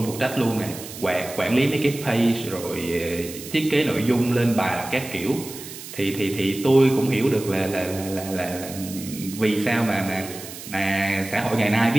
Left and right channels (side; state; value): right; noise; hiss, 13 dB below the sound